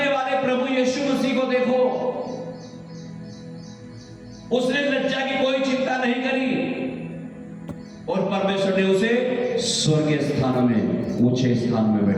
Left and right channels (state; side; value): identical; both; correlation 1.00